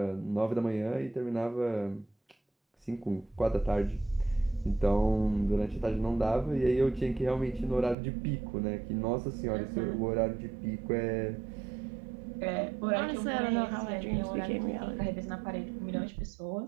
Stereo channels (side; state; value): left; drops out; at 8.0 s